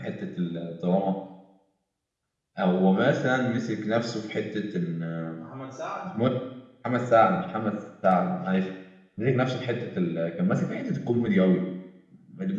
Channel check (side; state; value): both; identical; correlation 1.00